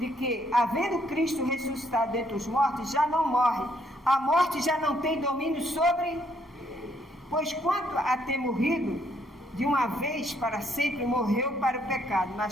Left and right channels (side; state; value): both; normal; correlation 0.70